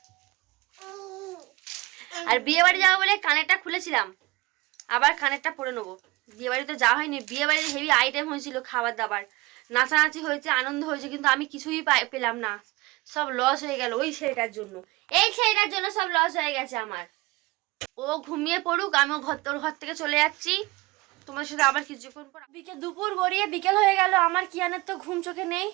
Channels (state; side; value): quieter; left; 22.5 dB